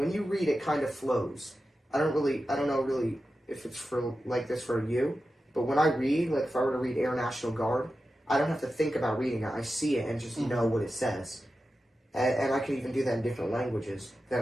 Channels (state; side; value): normal; both; correlation 0.92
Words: you read, it kind of flows. I don't know really if it's for like this for you, but when I read, like if I were to read Air National Guard, I don't have to think about reading it. I see it and just know what it says. And I can even do that in different languages that